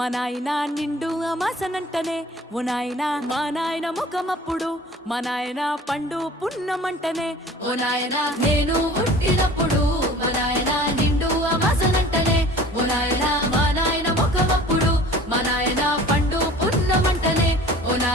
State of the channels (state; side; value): normal; both; correlation 0.45